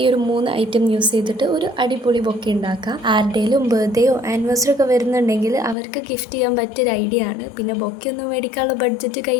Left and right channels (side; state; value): right; drops out; at 5.8 s